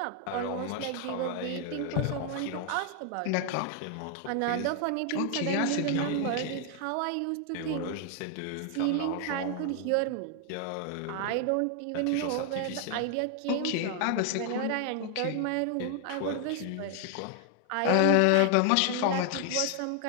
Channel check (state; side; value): different; both; correlation 0.00